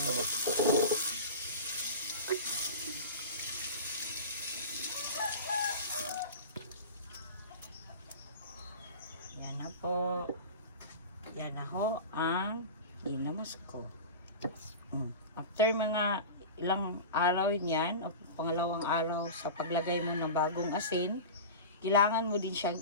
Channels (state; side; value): inverted; both; correlation -0.30